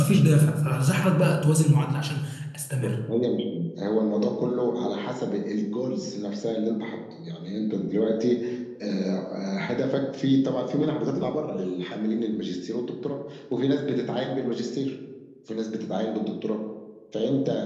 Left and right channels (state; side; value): identical; both; correlation 1.00